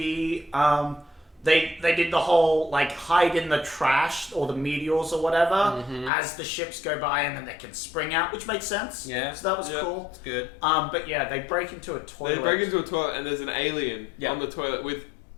they did the whole like hide in the trash or the meteors or whatever as the ships go by, and then they can spring out, which makes sense. Yeah. So that was Yeah. cool. It's good. But yeah, they break into a toilet. They break into a toilet and there's an alien Yeah. on the toilet with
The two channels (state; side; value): drops out; right; at 6.1 s